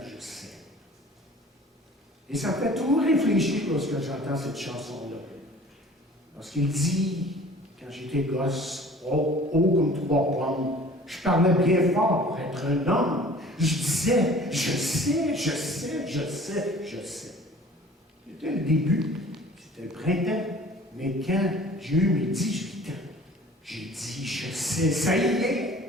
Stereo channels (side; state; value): both; normal; correlation 0.47